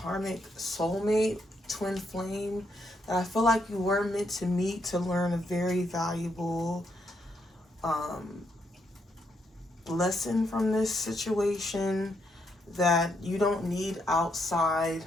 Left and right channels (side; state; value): both; normal; correlation 0.77